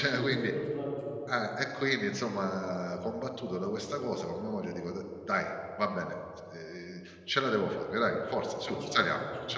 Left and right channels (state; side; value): identical; both; correlation 1.00